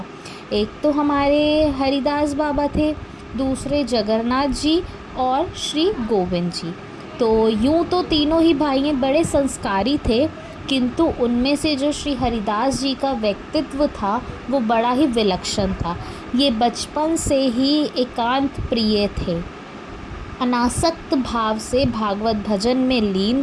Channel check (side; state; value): both; identical; correlation 1.00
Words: एक तो हमारे हरिदास बाबा थे, दूसरे जगन्नाथ जी और श्री गोविंद जी। तो यूं तो तीनों ही भाई बड़े संस्कारी थे, किंतु उनमें से जो श्री हरिदास जी का व्यक्तित्व था वो बड़ा ही विलक्षण था। ये बचपन से ही एकांत प्रिय थे। अनासक्त भाव से भागवत भजन में लीन